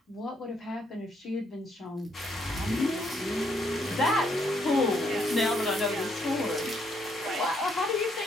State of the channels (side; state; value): both; normal; correlation 0.72